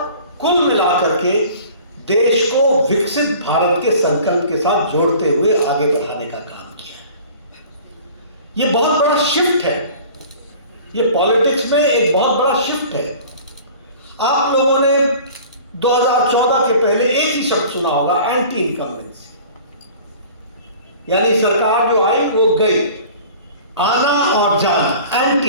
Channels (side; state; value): both; inverted; correlation -0.45